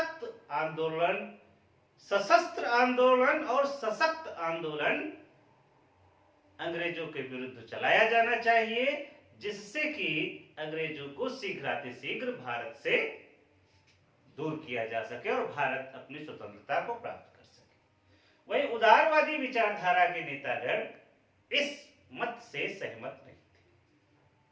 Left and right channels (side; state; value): both; identical; correlation 1.00